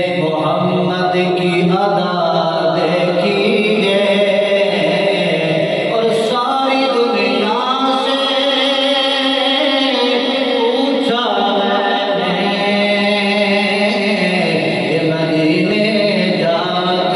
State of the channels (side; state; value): both; identical; correlation 1.00